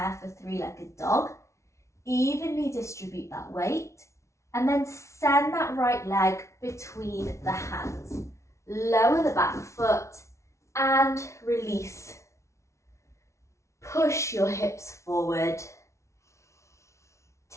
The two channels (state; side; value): late; right; 0.14 ms